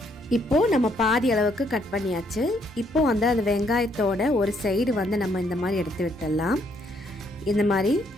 இப்போ நம்ம பாதி அளவுக்கு கட் பண்ணியாச்சு. இப்போ வந்து அந்த வெங்காயத்தோட ஒரு சைடு வந்து நம்ம இந்த மாதிரி எடுத்து விட்டுடலாம். இந்த மாதிரி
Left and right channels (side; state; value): both; normal; correlation 0.70